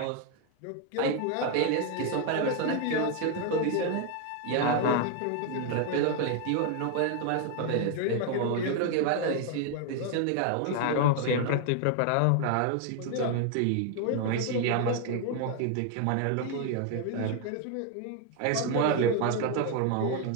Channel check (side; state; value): both; different; correlation 0.00